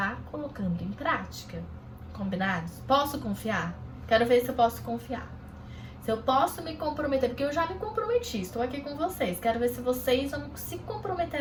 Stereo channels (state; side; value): identical; both; correlation 1.00